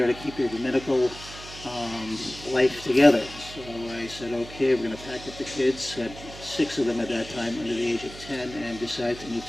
to keep your dominical life together. So I said, okay, we're going to pack up the kids, had 6 of them at that time under the age of 10, and decided to move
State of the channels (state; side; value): noise; right; hum, 15 dB below the sound